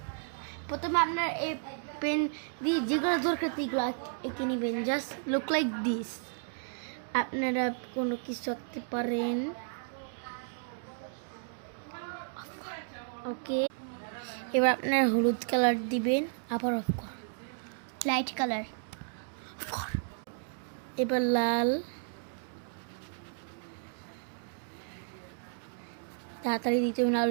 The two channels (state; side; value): silent; left; digital silence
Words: প্রথমে আপনার এই পেন দিয়ে যেগুলো দরকার সেগুলো এঁকে নেবেন। Just look like this. আপনারা কোনো কিছু আঁকতে পারেন। ওকে, এবার আপনার হলুদ কালার দিবেন, আবার অফ কর, লাইট কালার। এবার লাল, তাড়াতাড়ি দিতে হবে